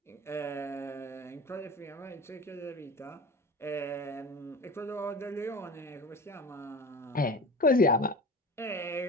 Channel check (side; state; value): both; normal; correlation 0.34